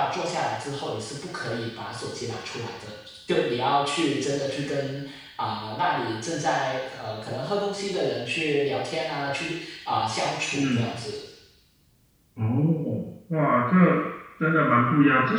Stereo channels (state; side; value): identical; both; correlation 1.00